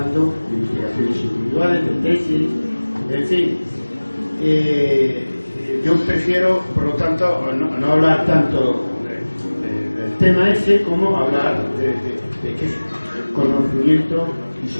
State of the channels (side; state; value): both; inverted; correlation -1.00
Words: de investigaciones individuales, de tesis, en fin. Yo prefiero, por lo tanto, no hablar tanto del tema ese como hablar de qué conocimiento